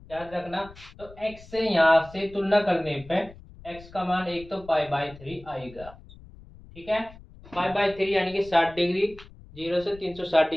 याद रखना। तो एक्स से यहाँ से तुलना करने पे एक्स का मान एक तो पाई बाई थ्री आएगा। ठीक है, पाई बाई थ्री यानी कि 60 डिग्री, 0 से 360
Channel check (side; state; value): left; noise; rumble, 20 dB below the sound